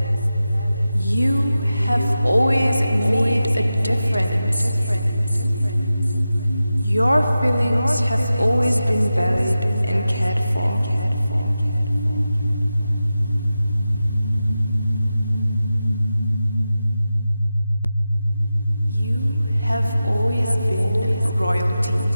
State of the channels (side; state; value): both; inverted; correlation -0.93